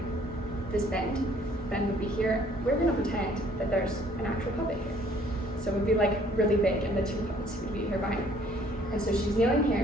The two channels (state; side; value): normal; both; correlation 0.60